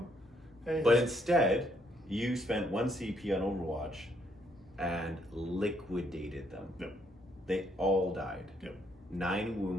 Hey, but instead, you spent 1 CP on Overwatch and liquidated them. Yep. They all died. Yep. 9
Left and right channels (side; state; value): both; normal; correlation 0.71